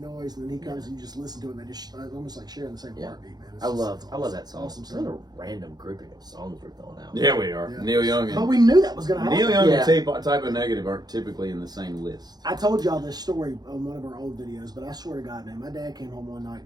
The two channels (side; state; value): left; late; 0.19 ms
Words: And then he comes and you just listen to it and they just it's almost like sharing the same Yeah. heartbeat, man. It's I just- love it's that song. Awesome It's not scene. a random grouping of songs we're throwing out. Yeah, we are. Yeah. Neil Young But and we knew that was going to happen. Neil Young Yeah. and Typo Negative aren't typically in the same list. I told y'all this story on one of our old videos, but I swear to God, man, my dad came home one night